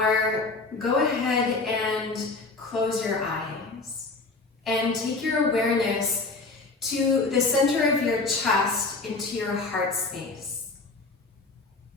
go ahead and close your eyes and take your awareness to the center of your chest, into your heart space.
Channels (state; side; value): quieter; right; 3.7 dB